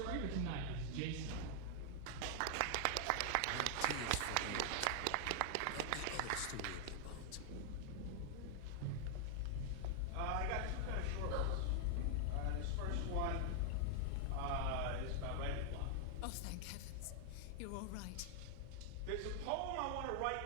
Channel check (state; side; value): different; both; correlation 0.00